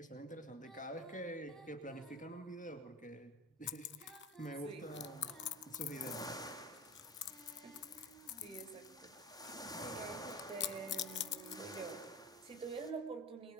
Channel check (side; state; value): both; normal; correlation 0.32